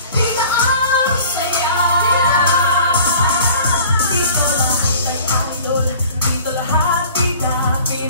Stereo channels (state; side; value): inverted; both; correlation -0.47